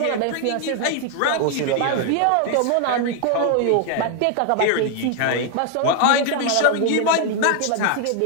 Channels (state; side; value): different; both; correlation 0.00